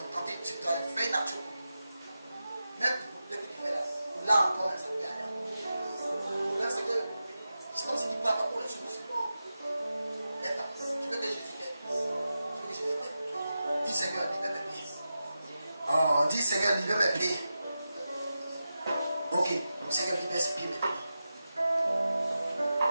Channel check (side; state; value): both; inverted; correlation -0.91